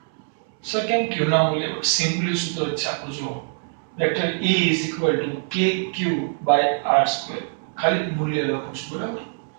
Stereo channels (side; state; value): left; silent; digital silence